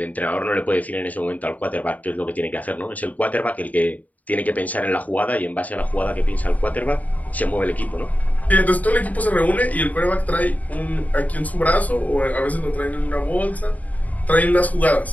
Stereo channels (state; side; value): late; right; 0.074 ms